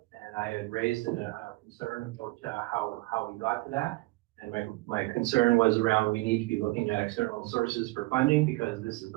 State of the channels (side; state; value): left; quieter; 22.2 dB